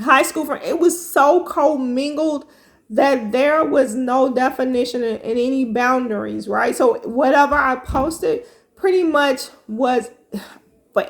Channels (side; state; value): both; identical; correlation 1.00